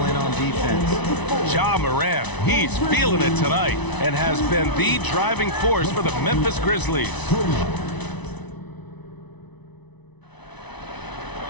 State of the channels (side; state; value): right; late; 1.0 ms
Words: in on defense. Ja Morant, he's feeling it tonight and has been the driving force for the Memphis Grizzlies.